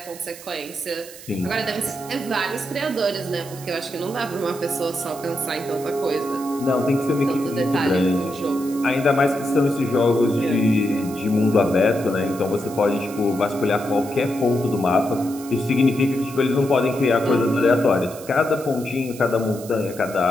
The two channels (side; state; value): right; noise; hiss, 16 dB below the sound